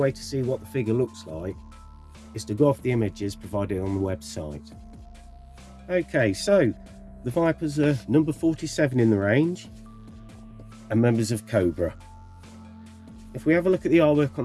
to see what the figure looks like is to go off the images provided on the website. Okay, so the Vipers are number 47 in the range and members of Cobra. If we have a look at the artwork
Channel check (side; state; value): both; identical; correlation 1.00